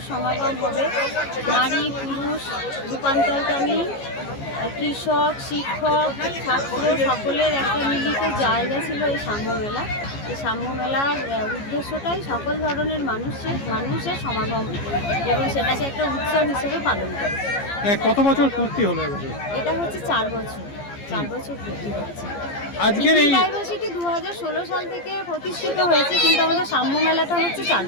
সমাগম হবে। নারী, পুরুষ, রূপান্তরকামী, কৃষক, শিক্ষক, ছাত্র সকলের একটা মিলিত জায়গা ছিল এই সাম্য মেলা। এই সাম্য মেলার উদ্দেশ্যটাই সকল ধরনের মানুষের সমাগম এবং সেটাকে একটা উৎসব হিসেবে পালন করে। কত বছর পূর্তি হলো এটা হচ্ছে 4 বছর পূর্তি হচ্ছে। আজকের এই ডাইভার্সিটি 2016 সাল থেকে প্রতিষ্ঠিত হয়েছে, কিন্তু আমাদের সাম্য মেলাটা হচ্ছে 4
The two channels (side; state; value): right; late; 15 ms